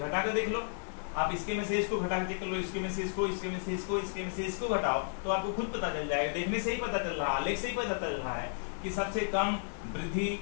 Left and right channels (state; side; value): silent; right; 56 dB below the other